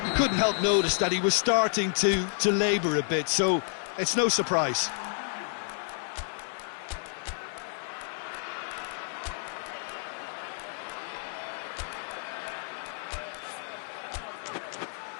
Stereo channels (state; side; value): silent; right; 56 dB below the other